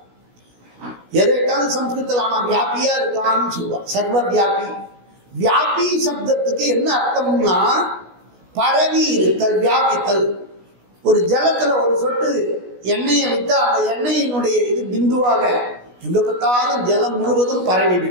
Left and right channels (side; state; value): left; late; 16 ms